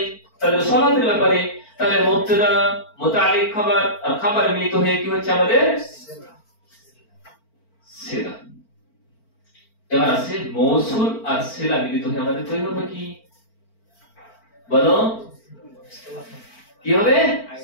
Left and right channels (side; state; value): right; late; 4.4 ms